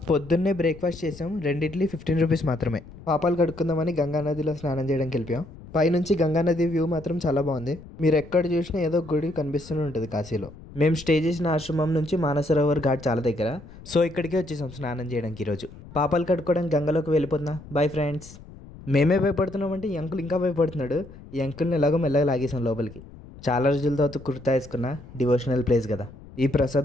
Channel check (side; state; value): left; noise; rumble, 18 dB below the sound